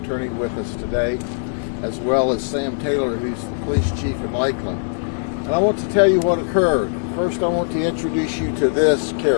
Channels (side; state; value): right; silent; digital silence